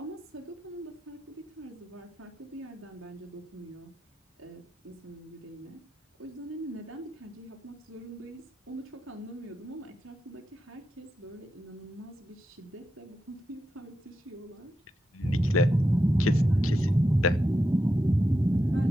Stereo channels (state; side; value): normal; both; correlation 0.87